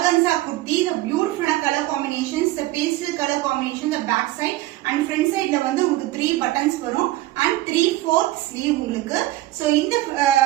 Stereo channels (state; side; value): quieter; left; 16.8 dB